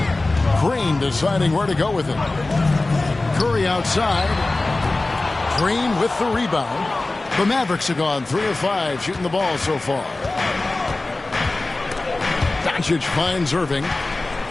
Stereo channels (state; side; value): quieter; right; 3.1 dB